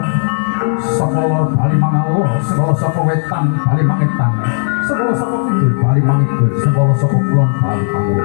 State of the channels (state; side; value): silent; right; digital silence